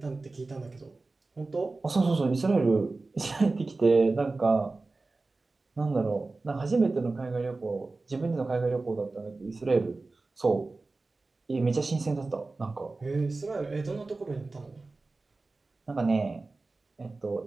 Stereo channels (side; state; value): left; quieter; 3.5 dB